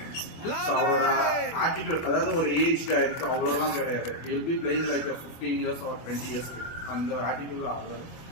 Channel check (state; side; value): late; right; 24 ms